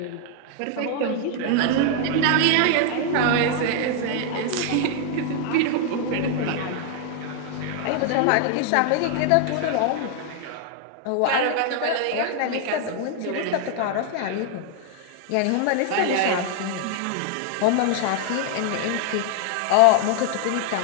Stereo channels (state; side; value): different; both; correlation 0.00